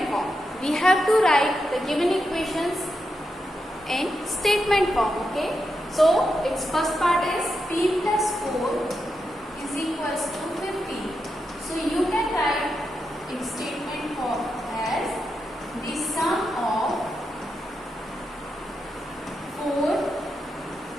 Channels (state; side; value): normal; both; correlation 0.86